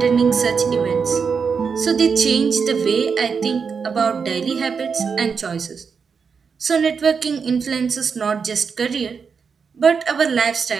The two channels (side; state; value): left; quieter; 5.8 dB